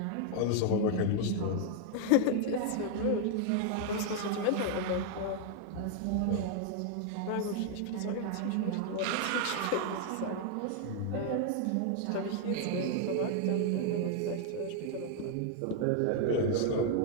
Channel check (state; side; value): different; both; correlation 0.00